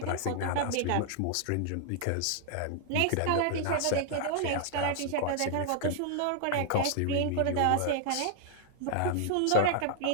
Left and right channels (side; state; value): both; different; correlation 0.00